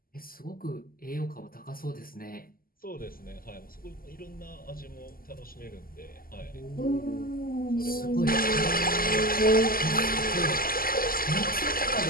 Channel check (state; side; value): late; right; 0.42 ms